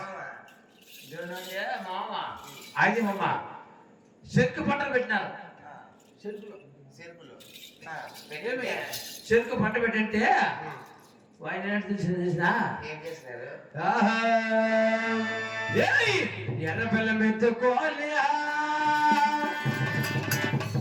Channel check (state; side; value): identical; both; correlation 1.00